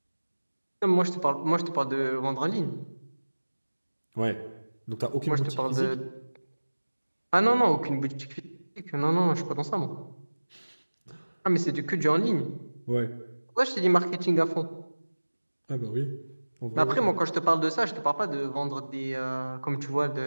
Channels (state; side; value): inverted; both; correlation -1.00